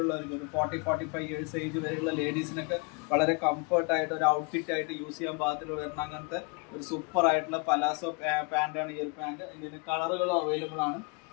ഒരു 40-45 ഇയേഴ്സ് ഏജ് വരെയുള്ള ലേഡീസിനൊക്കെ വളരെ കംഫർട്ടായിട്ട് ഒരു ഔട്ട്ഫിറ്റ് ആയിട്ട് യൂസ് ചെയ്യാൻ പാകത്തിൽ വരുന്ന അങ്ങനത്തെ ഒരു സൂപ്പർ ആയിട്ടുള്ള പലാസോ പാൻറ്റാണ് ഈ ഒരു പാൻറ്. ഇതിൻ്റെ കളറുകളും അവൈലബിൾ ആണ്.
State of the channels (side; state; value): right; quieter; 31.7 dB